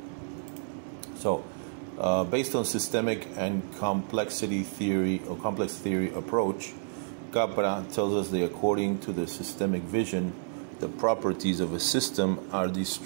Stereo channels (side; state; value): left; silent; digital silence